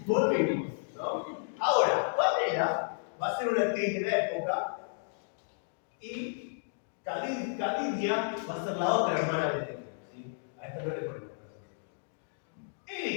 Volvimos, ¿no? Ahora, Pamela va a ser una actriz de la época y Cadidia va a ser la otra hermana de Bedekin, ¿sí? A esta no le ponemos.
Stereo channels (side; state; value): right; silent; digital silence